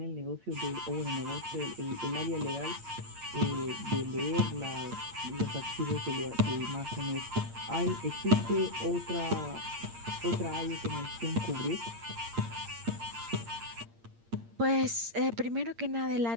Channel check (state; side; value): late; left; 8.7 ms